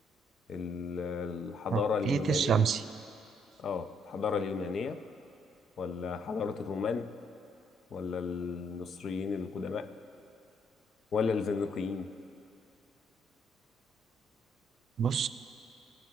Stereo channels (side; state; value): both; normal; correlation 0.70